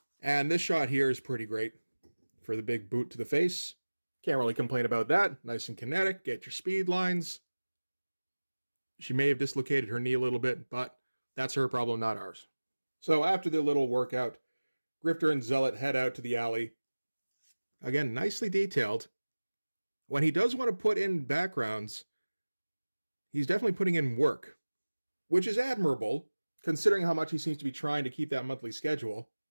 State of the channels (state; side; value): inverted; both; correlation -1.00